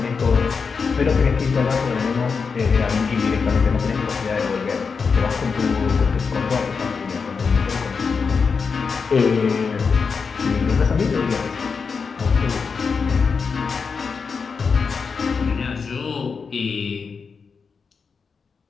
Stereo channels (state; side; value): quieter; right; 5.3 dB